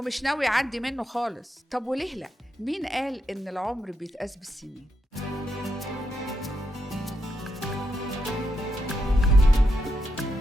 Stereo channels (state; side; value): normal; both; correlation 0.82